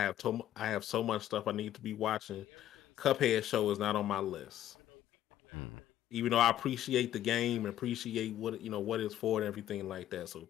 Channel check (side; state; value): right; quieter; 12.3 dB